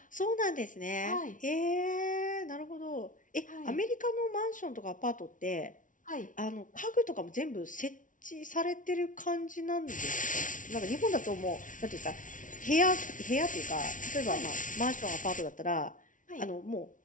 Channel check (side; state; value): right; late; 0.38 ms